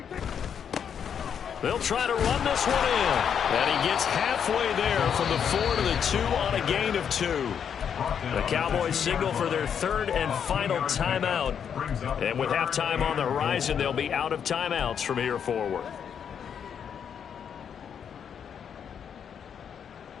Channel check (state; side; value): quieter; right; 7.8 dB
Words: They'll try to run this one in. And he gets halfway there from the 4 to the 2 on a gain of 2. The Cowboys signal for their 3rd and final timeout. And with halftime on the horizon, they'll be out of timeouts from here forward.